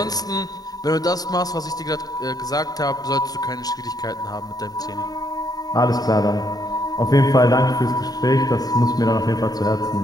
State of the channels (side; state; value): right; late; 0.18 ms